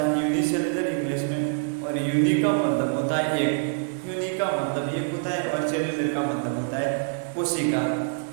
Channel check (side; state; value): left; silent; digital silence